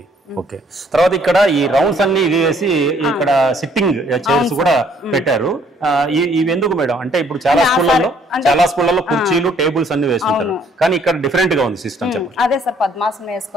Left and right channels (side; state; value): both; normal; correlation 0.63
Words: ఓకే. తర్వాత ఇక్కడ ఈ రౌండ్స్ అన్ని ఇది వేసి ఇక్కడ సిట్టింగ్ చైర్స్ కూడా పెట్టారు. ఇవి ఎందుకు మేడం? అంటే ఇప్పుడు చాలా స్కూళ్ళల్లో కుర్చీలు టేబుల్స్ అన్ని వేస్తుంటారు, కానీ ఇక్కడ డిఫరెంట్ గా ఉంది సిస్టమ్. చెప్పండి. అదే సార్, పద్మాసనం